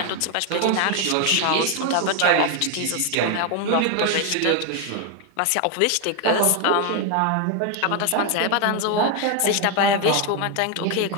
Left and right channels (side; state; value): both; different; correlation 0.01